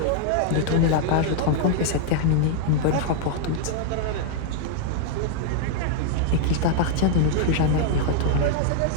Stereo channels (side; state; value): both; different; correlation 0.00